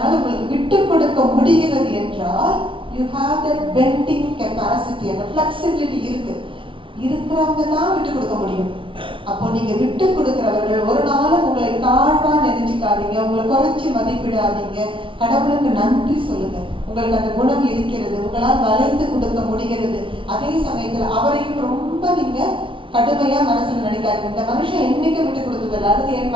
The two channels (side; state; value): left; late; 0.25 ms